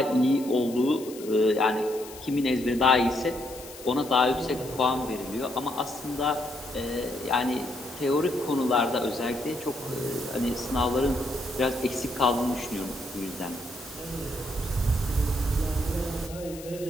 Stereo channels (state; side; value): noise; left; hiss, 16 dB below the sound